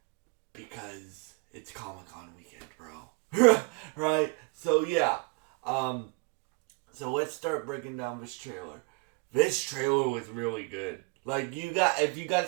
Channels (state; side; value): quieter; left; 30.4 dB